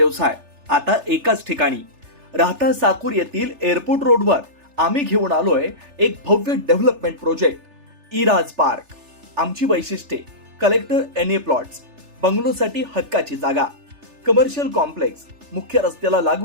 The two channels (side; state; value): left; late; 3.4 ms